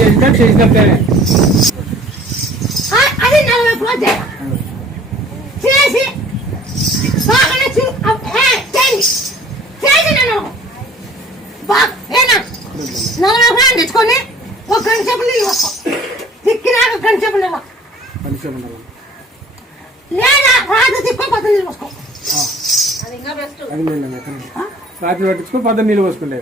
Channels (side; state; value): both; normal; correlation 0.51